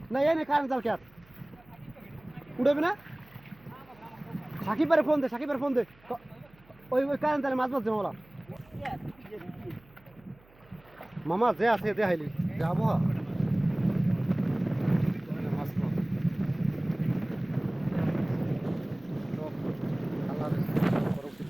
না, এই কারেন্ট জাল কেয়ার উঠবে না। সাকিবের ফোন দে, সাকিবের ফোন দে, ওই ওই কারেন্ট জালে মাছ মারছে মামলা। মামা যে আছে দে হাইলি, যে আবহাওয়া।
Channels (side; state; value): right; noise; hum, 28 dB below the sound